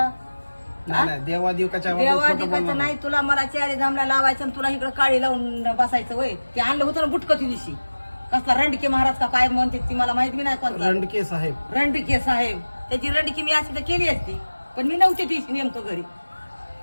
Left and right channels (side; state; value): both; inverted; correlation -1.00